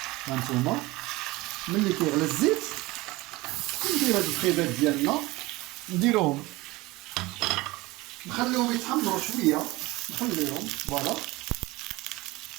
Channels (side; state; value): left; quieter; 20.8 dB